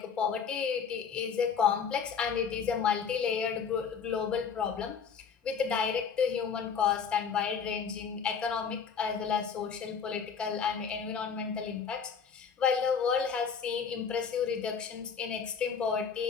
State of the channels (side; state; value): right; quieter; 6.5 dB